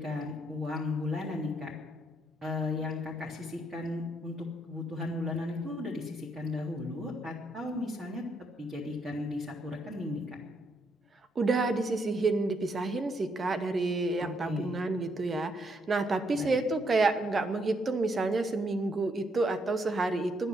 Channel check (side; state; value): both; normal; correlation 0.74